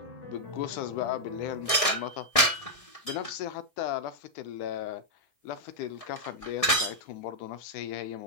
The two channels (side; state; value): right; late; 1.6 ms